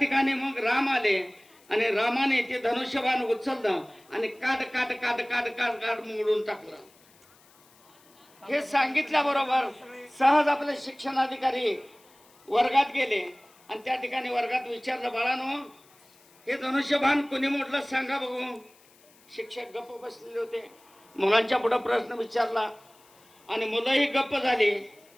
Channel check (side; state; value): left; noise; hiss, 29 dB below the sound